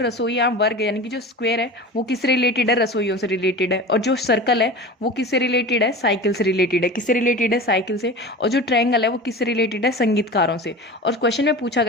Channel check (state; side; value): normal; both; correlation 0.33